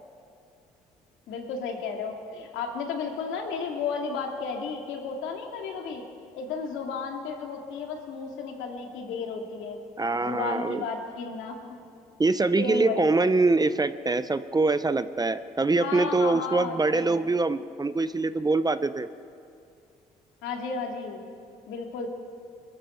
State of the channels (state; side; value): normal; both; correlation 0.68